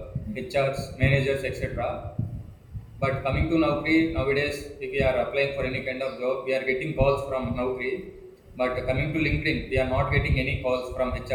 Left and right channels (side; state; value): both; identical; correlation 1.00